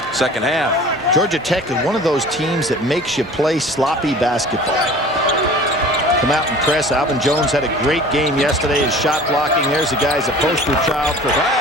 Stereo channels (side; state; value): both; normal; correlation 0.44